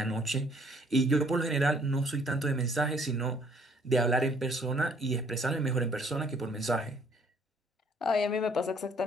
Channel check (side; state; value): both; normal; correlation 0.62